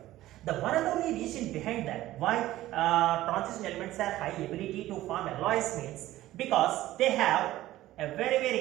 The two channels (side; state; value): left; quieter; 15.4 dB